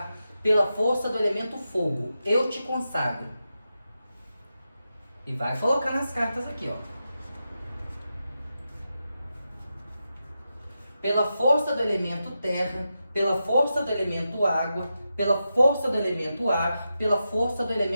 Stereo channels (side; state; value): both; inverted; correlation -0.89